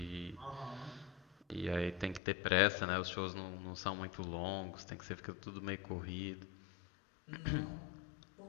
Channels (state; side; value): drops out; right; at 2.2 s